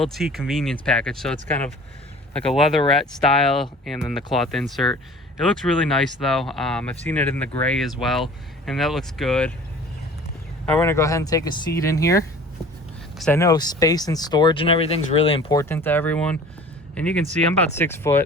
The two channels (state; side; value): normal; both; correlation 0.45